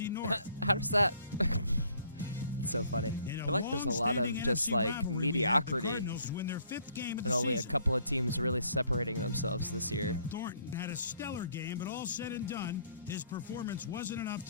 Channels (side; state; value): both; inverted; correlation -0.63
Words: North. How does that? It's so funny. I feel like there's a lot of just like mediocrity, and only a couple of teams really separating themselves this year. Thornton had a stellar game, but all said and done, his performance wasn't enough